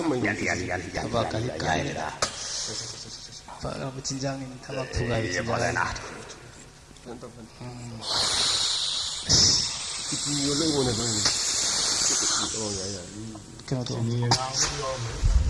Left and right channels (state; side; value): identical; both; correlation 1.00